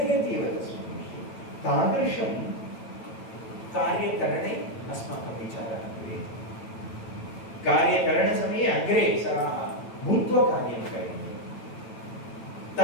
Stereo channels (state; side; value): late; right; 9.1 ms